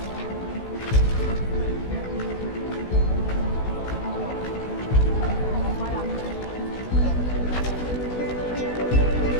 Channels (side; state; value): right; late; 16 ms